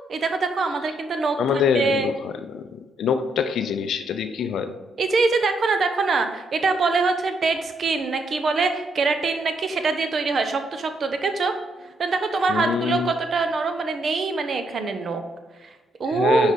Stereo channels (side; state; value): both; normal; correlation 0.75